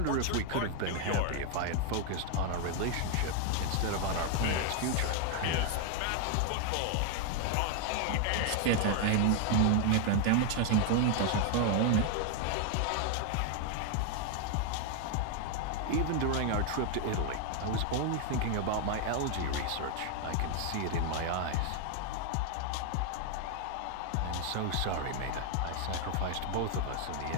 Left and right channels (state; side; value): different; both; correlation 0.00